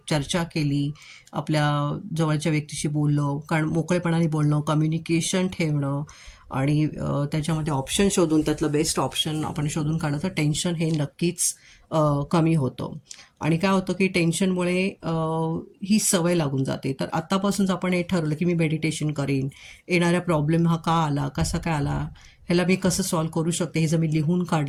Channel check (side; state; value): both; identical; correlation 1.00